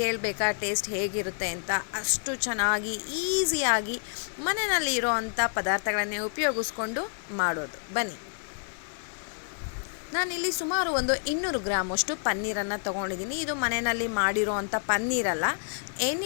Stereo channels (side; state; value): right; silent; 59 dB below the other